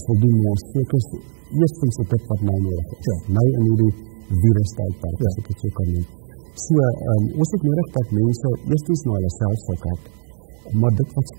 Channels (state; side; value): silent; left; digital silence